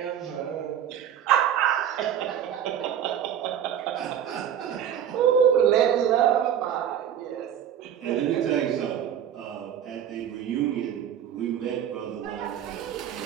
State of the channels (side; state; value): left; quieter; 9.5 dB